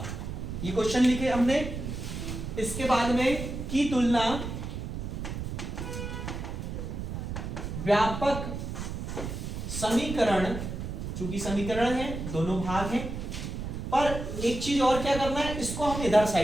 ये क्वेश्चन लिखे हमने। इसके बाद में की तुलना व्यापक समीकरण, चूंकि समीकरण है दोनों भाग हैं, पर एक चीज और क्या करना है, इसको हम इधर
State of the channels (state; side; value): noise; right; rumble, 6 dB below the sound